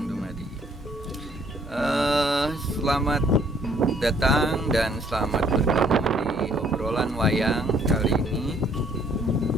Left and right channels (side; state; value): both; normal; correlation 0.64